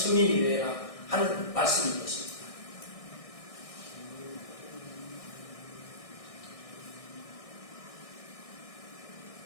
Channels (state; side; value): late; right; 1.6 ms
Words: 되라 하는 말씀인 것입니다.